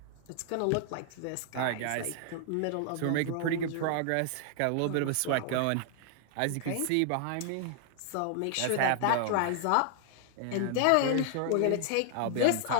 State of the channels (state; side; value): different; both; correlation 0.00